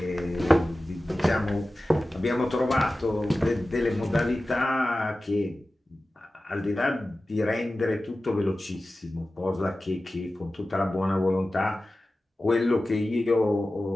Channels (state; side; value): normal; both; correlation 0.95